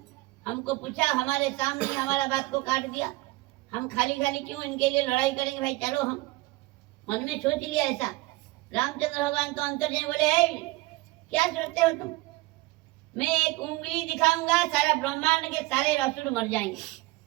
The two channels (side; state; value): left; quieter; 20.5 dB